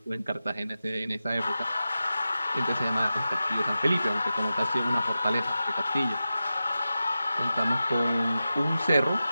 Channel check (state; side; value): inverted; both; correlation -0.93